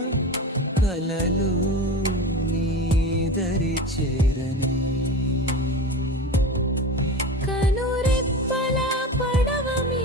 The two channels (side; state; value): both; normal; correlation 0.29